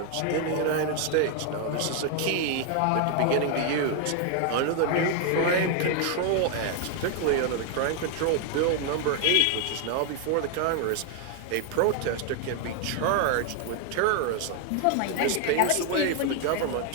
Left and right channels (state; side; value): different; both; correlation 0.00